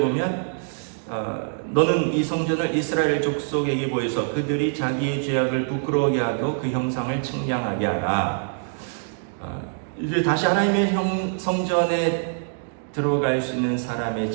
너는 이 성전을 이스라엘 족속에게 보여서 그들이 자기의 죄악을 부끄러워하게 하고 그 형상을 측량하게 하라. 이제 다시 하나님의 성전에 들어갈 수 있는 사람의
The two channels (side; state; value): left; silent; digital silence